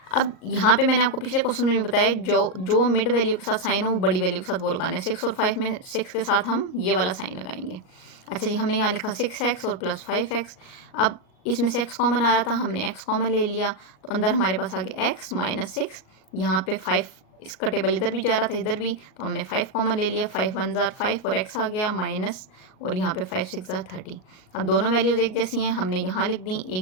अब यहाँ पे मैंने आपको पिछले क्वेश्चन में भी बताया, जो मिड वैल्यू के साथ साइन हो वो बड़ी वैल्यू के साथ वो लगाना है। 6 और 5 में 6 के साथ हम ये वाला साइन लगाएंगे। अच्छा जी, हमने यहाँ लिखा 6x और प्लस 5x। अब इसमें से x कॉमन आ रहा था, हमने x कॉमन ले लिया, तो अंदर हमारे पास आ गया x - 6। यहाँ पे 5, इसका टेबल इधर भी जा रहा था इधर भी, तो हमने 5 कॉमन ले लिया, 5 1 जार 5 और x आ गया माइनस, और यहाँ पे 5 6 जार 30। अब दोनों वैल्यूज़ एक जैसी हैं, हमने यहाँ लिख दी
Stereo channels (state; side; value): late; right; 38 ms